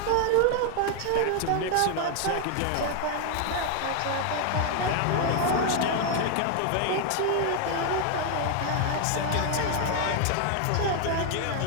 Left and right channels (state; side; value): different; both; correlation 0.00